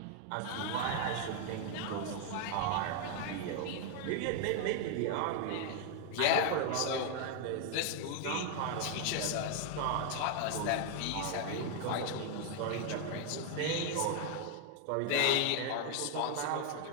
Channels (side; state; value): both; different; correlation 0.00